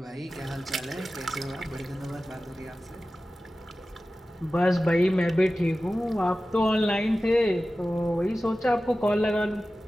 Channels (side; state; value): both; normal; correlation 0.95